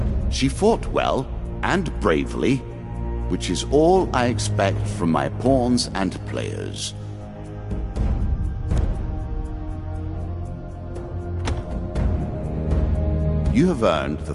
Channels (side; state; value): both; identical; correlation 1.00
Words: she fought well and bravely, which is all I expect from my pawns and players. You have earned the